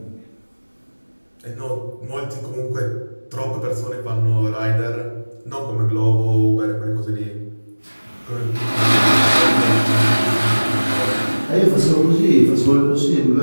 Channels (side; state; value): both; inverted; correlation -1.00